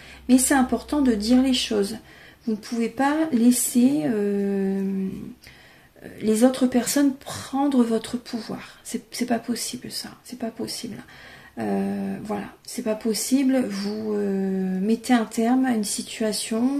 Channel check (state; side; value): identical; both; correlation 1.00